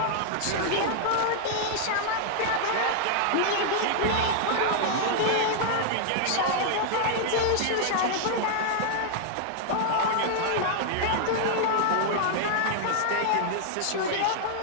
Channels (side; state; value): both; different; correlation -0.01